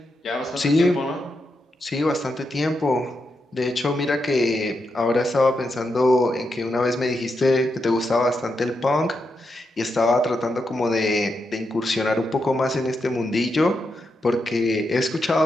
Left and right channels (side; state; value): both; normal; correlation 0.84